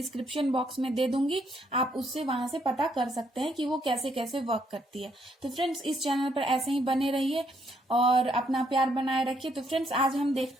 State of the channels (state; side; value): normal; both; correlation 0.72